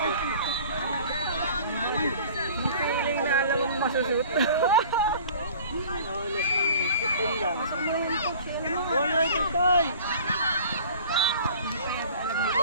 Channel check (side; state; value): both; inverted; correlation -0.46